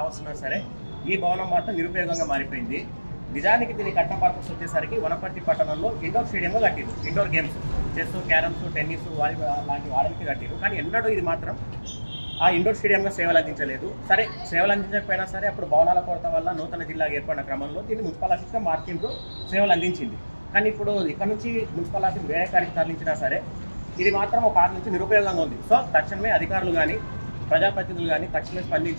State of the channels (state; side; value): inverted; both; correlation -1.00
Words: సరే ఈ భవనం మాత్రం నిరుపయోగంగా మారిపోయింది. నిజానికి దీని కట్టిన పర్పస్ వచ్చేసరికి వనపర్తి పట్టణంలో ఇండోర్ స్టేడియంలో కట్టిరు. Indoor games chess, carroms, tennis, volleyball లాంటి వాడడానికి కట్టిరు. కానీ ఎన్నడూ ఇది మాత్రం ఆ ఇండోర్ స్టేడియంగా సేవలు అందించలేదు. సరే, సేవలు అందించకపోయినా సరే అప్పుడు భవనాల కొరత వల్ల నూతన జిల్లాగా ఏర్పడిన క్రమంలో దీన్ని మున్సిపల్ ఆఫీస్గా మార్చిండ్రు, సేవలు అందించింది. కానీ ఇప్పుడు ఇక్కడ నుంచి మున్సిపల్ ఆఫీస్ వేరే కాడికి తరలించినా సరే ఇది మాత్రం ఒక 6 నుంచి నిరుపయోగంగా ఉంది. సో తక్షణమే అధికారులు కానీ ప్రజాప్రతినిధులు కానీ తక్షణమే